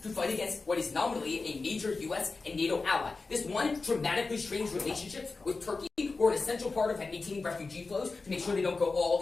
to fight against what is nominally a major U.S. and NATO ally. This one dramatically strains relationships with Turkey, who are an essential part of maintaining refugee flows to make sure they don't go all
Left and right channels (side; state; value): right; quieter; 4.0 dB